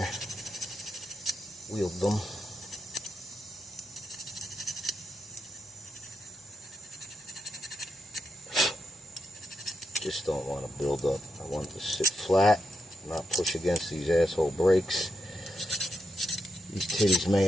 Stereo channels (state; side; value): normal; both; correlation 0.84